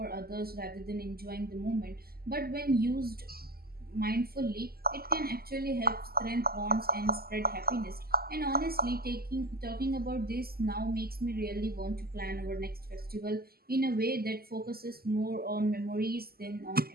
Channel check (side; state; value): left; late; 0.45 ms